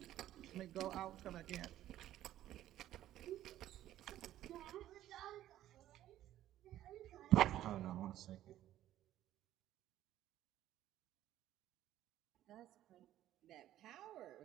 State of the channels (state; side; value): quieter; left; 13.1 dB